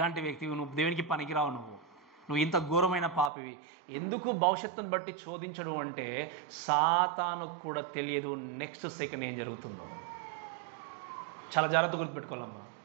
దేవునికి పనికిరావు, నువ్వు ఇంత ఘోరమైన పాపివి. ఎందుకు భవిష్యత్తును బట్టి శోధించడం అంటే సాతానుకు కూడా తెలియదు నెక్స్ట్ సెకండ్ ఏం జరుగుతుందో. చాలా జాగ్రత్త గుర్తుపెట్టుకోవాలమ్మా.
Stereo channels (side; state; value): left; drops out; at 3.3 s